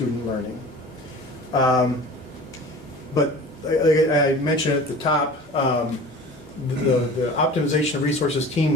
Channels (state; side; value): normal; both; correlation 0.39